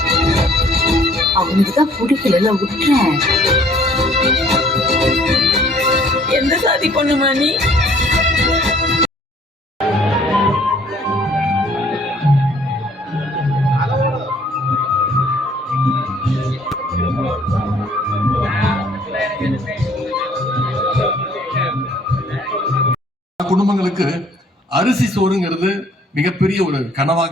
அவனுக்குதான் பிடிக்கல விட்டுறேன். எந்த சாதி பொண்ணுமா நீ? குடும்பங்களுக்கு அரிசி சோறுங்கிறது மிகப்பெரிய ஒரு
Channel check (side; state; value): both; normal; correlation 0.58